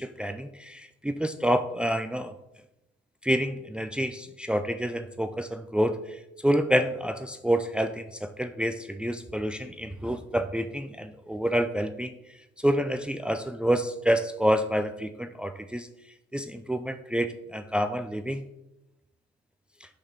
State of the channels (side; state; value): both; normal; correlation 0.87